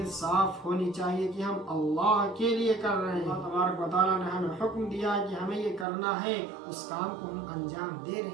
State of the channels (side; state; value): left; drops out; at 5.9 s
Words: صاف ہونی چاہیے کہ ہم اللہ کے لیے کر رہے ہیں۔ اللہ تبارک و تعالیٰ نے ہمیں حکم دیا کہ ہمیں یہ کرنا ہے، اس کام کو ہم انجام دے